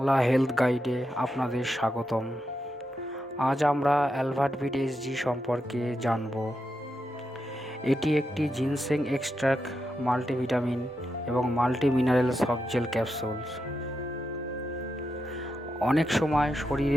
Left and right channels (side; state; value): both; normal; correlation 0.86